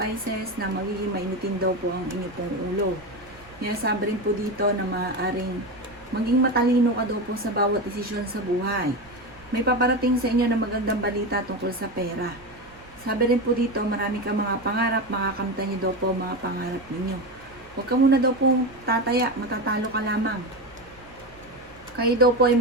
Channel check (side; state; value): right; noise; rumble, 24 dB below the sound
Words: na magiging mainitin daw po ang inyong pong ulo. Sinasabi rin po dito na maaaring maging matalino ka daw po sa bawat desisyon sa buhay. May paparating sa inyo na magandang balita tungkol sa pera. Sabi rin po dito, marami ka mga pangarap, makakamtan niyo daw po mga pangarap ninyo. Huwag ka muna daw po tataya, matatalo ka lamang. Kayo daw po ay